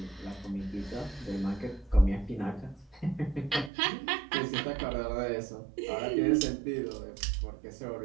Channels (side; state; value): left; drops out; at 3.7 s